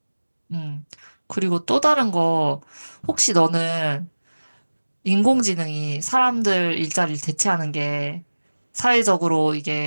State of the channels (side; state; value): both; inverted; correlation -1.00